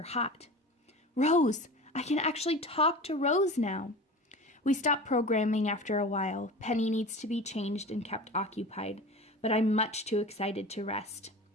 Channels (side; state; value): both; normal; correlation 0.34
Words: hot. Rose, I can actually talk to Rose now. We stopped programming after a while. Penny needs to be changed and kept occupied, but I'm much too excited to rest.